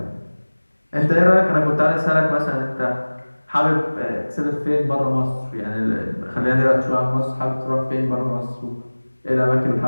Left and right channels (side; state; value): both; inverted; correlation -1.00